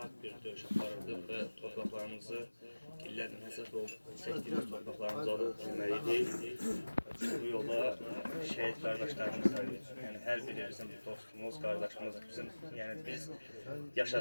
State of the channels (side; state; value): both; inverted; correlation -1.00